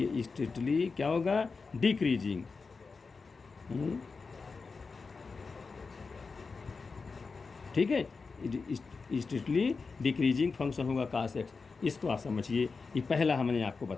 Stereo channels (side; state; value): right; quieter; 4.6 dB